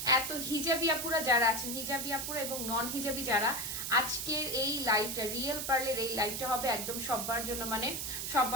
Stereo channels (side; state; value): right; noise; hiss, 3 dB below the sound